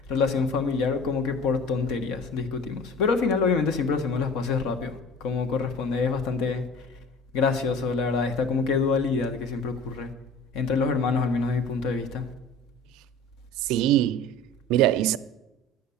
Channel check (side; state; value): both; normal; correlation 0.41